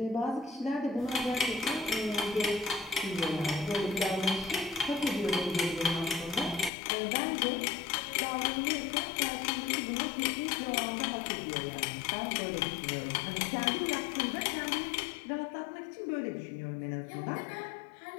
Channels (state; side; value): drops out; right; at 6.7 s